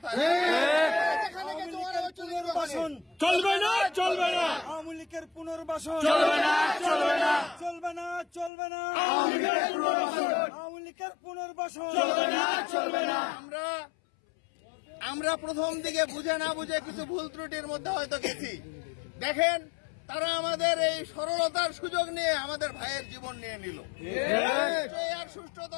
চলবে না, চলবে না, আওয়ামী লীগের পুনর্বাসন চলবে না, চলবে না, চলবে না, চলবে না, আওয়ামী লীগের পুনর্বাসন আওয়ামী লীগের পুনর্বাসন চলবে না, চলবে না। আমরা প্রথম দিকে বুঝে না বুঝে কিছু ভুল ত্রুটির মধ্যে হয়তো গেছি। দেখেন, তারা আমাদের এই সরলতার সুযোগ নিয়ে আমাদের ভাইয়ের জীবন নিয়ে নিল। এর সুষ্ঠু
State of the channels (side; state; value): right; drops out; at 8.5 s